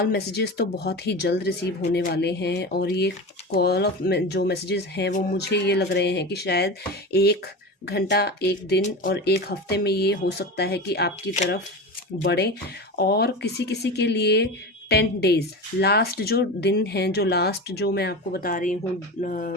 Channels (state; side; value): normal; both; correlation 0.27